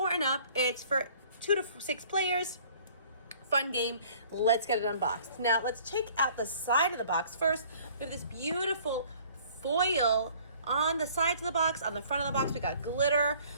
and up. It's for 2 to 6 players. Fun game. Let's get it unboxed. Now let's check out the side of the box first. We have this beautiful foil on the sides of the box. On the front of the box we got glitter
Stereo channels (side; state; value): both; inverted; correlation -0.54